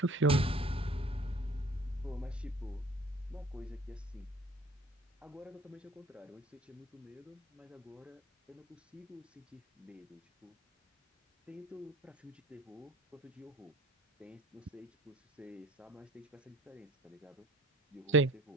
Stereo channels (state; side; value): normal; both; correlation 0.49